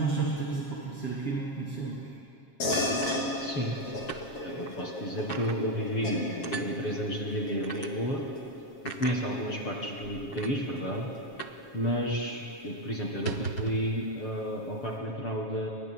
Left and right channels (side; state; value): right; late; 7.4 ms